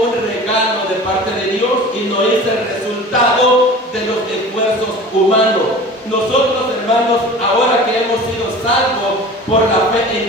regalo de parte de Dios y no es el resultado de los esfuerzos humanos. Nosotros, hermanos, ahora que hemos sido salvos por la fe en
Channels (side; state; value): both; normal; correlation 0.39